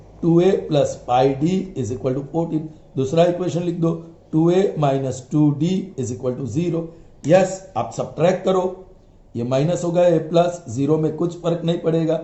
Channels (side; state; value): both; identical; correlation 1.00